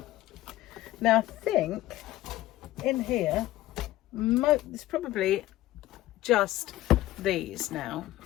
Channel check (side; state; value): right; quieter; 15.6 dB